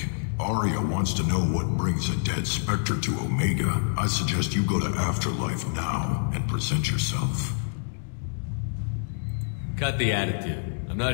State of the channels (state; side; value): silent; right; digital silence